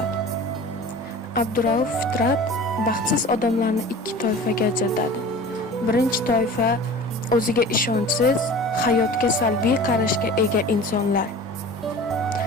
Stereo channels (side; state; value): both; normal; correlation 0.39